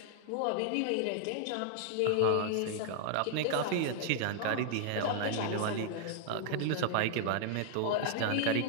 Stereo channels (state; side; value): different; both; correlation 0.00